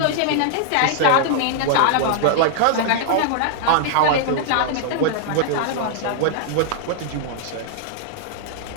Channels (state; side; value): different; both; correlation -0.01